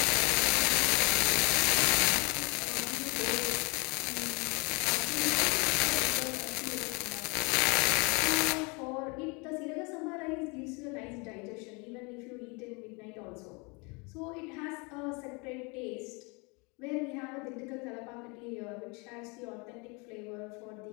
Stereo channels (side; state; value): right; quieter; 29.9 dB